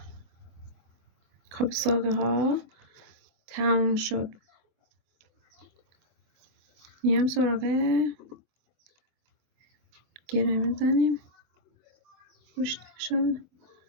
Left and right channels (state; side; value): late; left; 24 ms